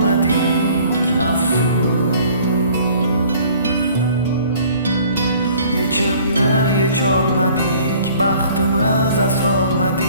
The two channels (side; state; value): both; inverted; correlation -0.53